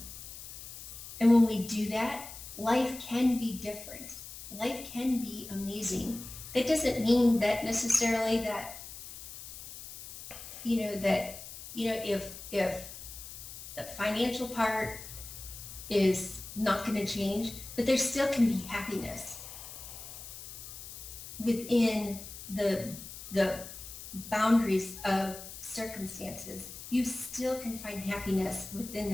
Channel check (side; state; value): left; noise; hiss, 12 dB below the sound